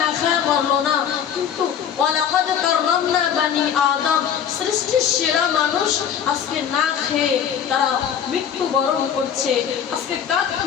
খায়া মরলো না, কিন্তু ওয়ালাকাদ কাররামনা বানি আদম, সৃষ্টির সেরা মানুষ আজকে না খেয়ে তারা মৃত্যুবরণ করছে। আজকে কাক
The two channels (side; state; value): right; quieter; 8.5 dB